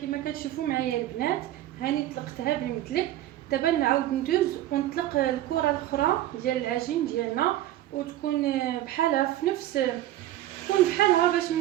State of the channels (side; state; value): left; quieter; 13.8 dB